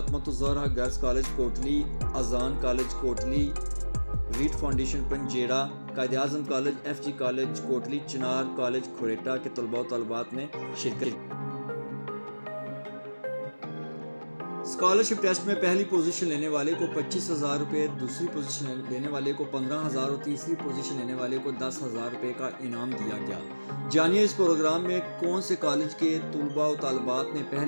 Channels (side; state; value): both; inverted; correlation -1.00